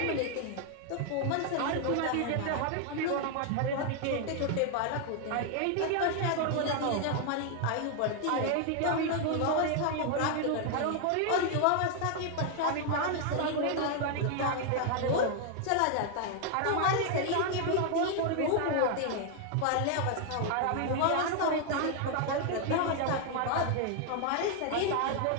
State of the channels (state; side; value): different; both; correlation 0.00